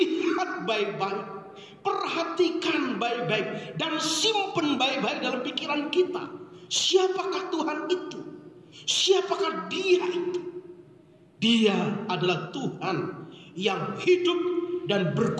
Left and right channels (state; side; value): identical; both; correlation 1.00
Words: baik-baik, perhatikan baik-baik, dan simpen baik-baik dalam pikiran kita. Siapakah Tuhan itu? Siapakah Dia itu? Dia adalah Tuhan yang hidup dan